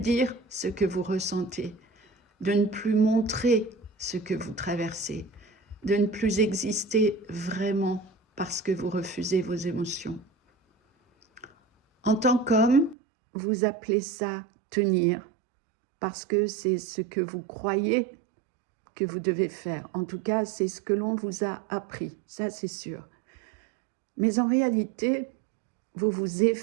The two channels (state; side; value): drops out; left; at 13.0 s